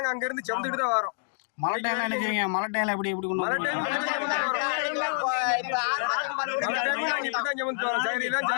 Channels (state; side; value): silent; right; digital silence